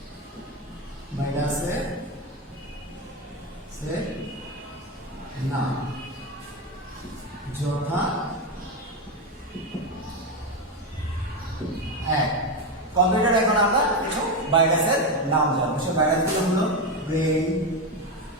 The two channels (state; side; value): normal; both; correlation 0.12